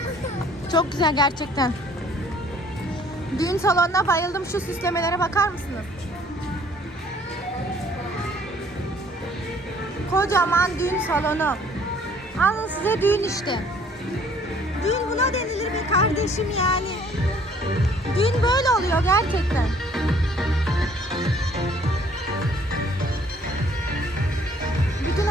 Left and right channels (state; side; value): normal; both; correlation 0.58